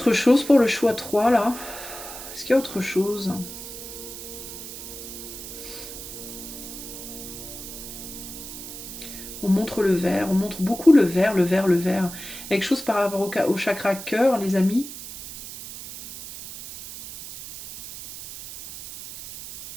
chose pour le choix 3 là? Est-ce qu'il y a autre chose? On montre le verre, on montre beaucoup le verre, le verre, le verre. Quelque chose par rapport au chakra cœur, les amis?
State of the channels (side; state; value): right; noise; hiss, 11 dB below the sound